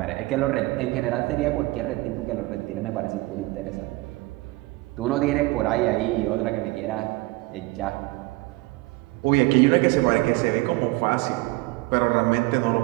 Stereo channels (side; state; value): left; quieter; 21.6 dB